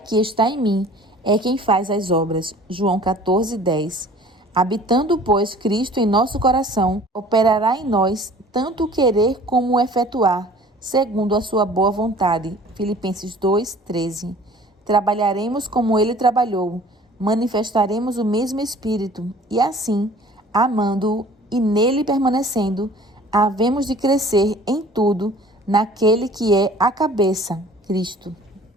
que está em mim é quem faz as obras. João 14,10. Habitando, pois, Cristo em nosso coração, operará em nós tanto o querer como o efetuar, segundo a sua boa vontade. Filipenses 2,13. Trabalharemos como ele trabalhou, manifestaremos o mesmo Espírito, e assim, amando-o e nele permanecendo, havemos de crescer em tudo naquele que é a cabeça, Cristo.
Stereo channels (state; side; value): normal; both; correlation 0.49